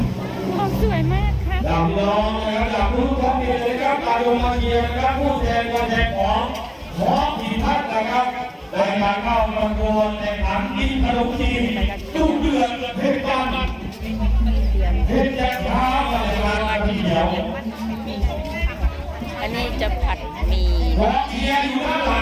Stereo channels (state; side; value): identical; both; correlation 1.00